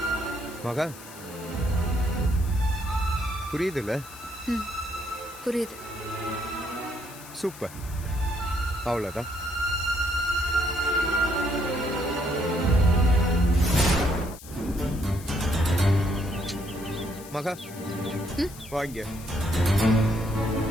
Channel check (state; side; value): noise; left; hiss, 17 dB below the sound